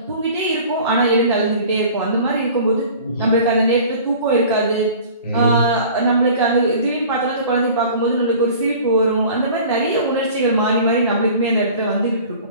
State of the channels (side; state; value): both; inverted; correlation -0.44